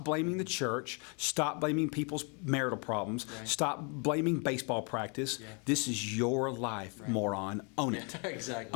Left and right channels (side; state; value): right; quieter; 35.0 dB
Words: blaming the church. Stop blaming people's marital problems. Right. Stop blaming baseball practice. Yeah. This is your life, moron. Own it. Exactly.